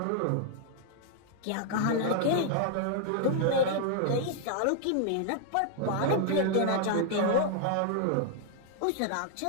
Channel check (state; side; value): different; both; correlation 0.00